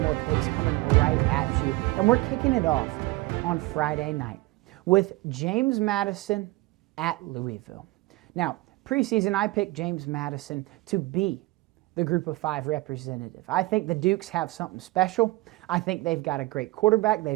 more picks coming right at you, and we're kicking it off on Friday night with James Madison at Louisville. Now, preseason, I picked James Madison to be the Group of 5 representative. I think the Dukes have something special. I think they've got a great quarterback,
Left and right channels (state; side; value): quieter; left; 20.7 dB